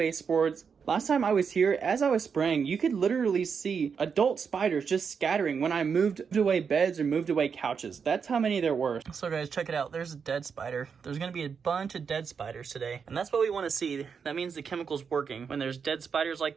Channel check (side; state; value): left; quieter; 6.2 dB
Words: Last time I was here, as I was spraying, you could literally see adult spiders just scattering when I moved away beds or moved away couches. That's how many there were. So guys, check it out. There's a dead spider. There's gonna be a bunch of dead spiders today. And that's what we wanna see. That means the chemical's working. When there's dead spiders like